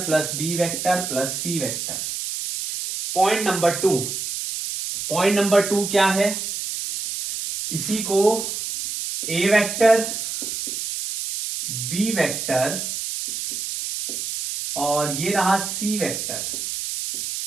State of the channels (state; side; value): noise; right; hiss, 4 dB below the sound